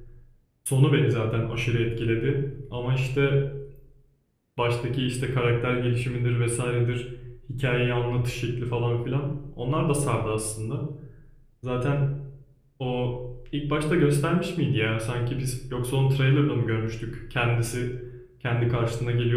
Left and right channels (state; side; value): identical; both; correlation 1.00